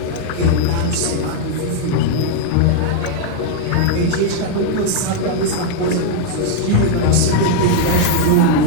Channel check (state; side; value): different; both; correlation 0.00